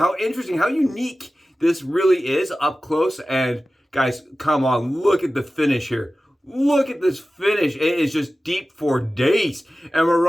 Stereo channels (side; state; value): both; normal; correlation 0.96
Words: interesting, how unique this really is up close. And guys, come on, look at the finish here. Look at this finish. It is just deep for days. And we're